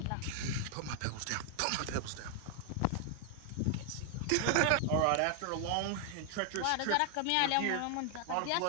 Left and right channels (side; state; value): both; different; correlation 0.00